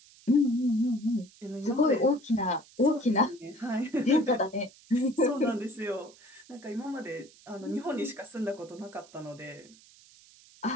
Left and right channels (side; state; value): right; noise; hiss, 25 dB below the sound